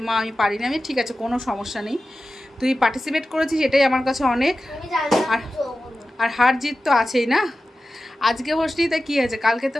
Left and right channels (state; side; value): normal; both; correlation 0.94